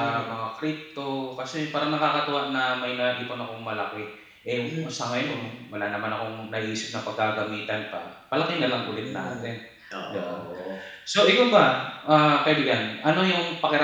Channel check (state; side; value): identical; both; correlation 1.00